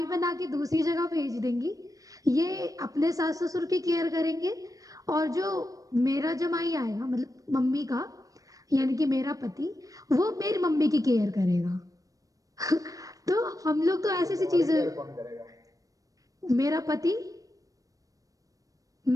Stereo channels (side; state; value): left; late; 0.17 ms